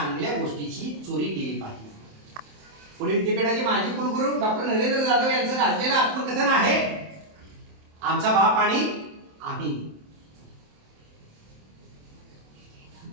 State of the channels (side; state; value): left; late; 27 ms